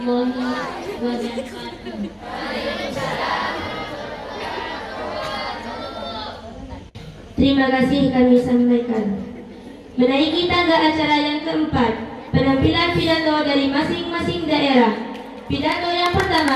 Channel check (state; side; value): identical; both; correlation 1.00